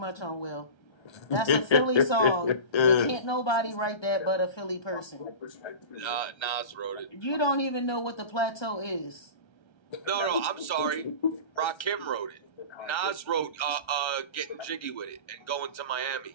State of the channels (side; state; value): right; late; 1.3 ms